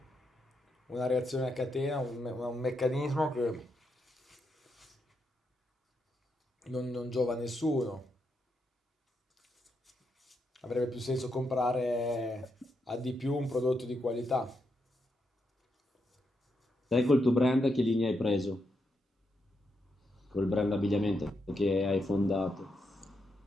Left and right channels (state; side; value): normal; both; correlation 0.82